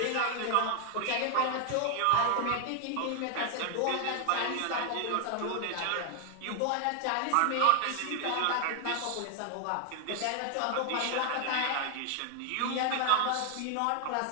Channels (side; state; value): both; different; correlation 0.00